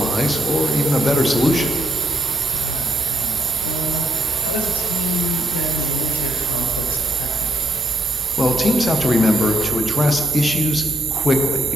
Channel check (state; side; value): normal; both; correlation 0.72